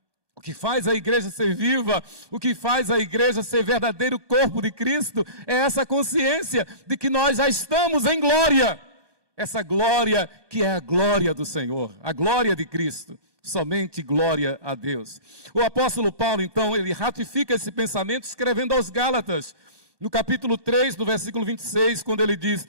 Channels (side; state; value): left; late; 1.2 ms